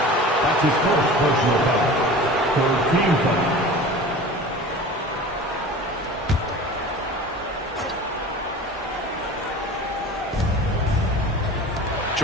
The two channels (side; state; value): both; normal; correlation 0.38